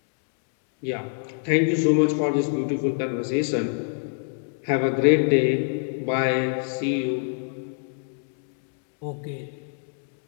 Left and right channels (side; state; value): right; silent; digital silence